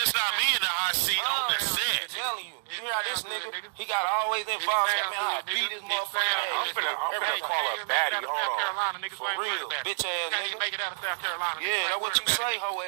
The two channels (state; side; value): silent; left; digital silence